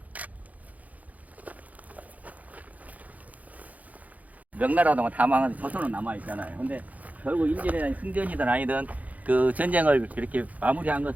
명나라 동안 다 망한 조선은 남아 있잖아요. 근데 결국 임진왜란 승전이든 아니든 그 전쟁을 이렇게 마무리한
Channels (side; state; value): left; late; 0.076 ms